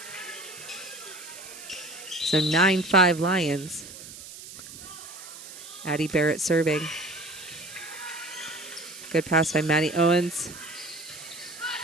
So 9-5 Lions. Addie Barrett serving. Good pass by Maddie Owens.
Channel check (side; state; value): right; noise; hiss, 14 dB below the sound